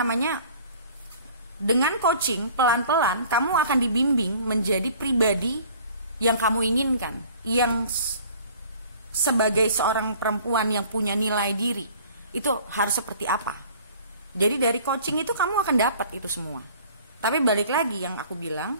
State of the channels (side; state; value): both; inverted; correlation -0.50